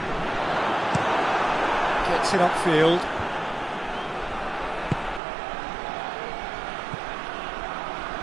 Gets it upfield.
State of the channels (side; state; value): left; drops out; at 5.2 s